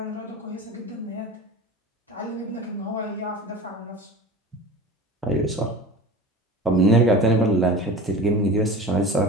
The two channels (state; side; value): normal; both; correlation 0.35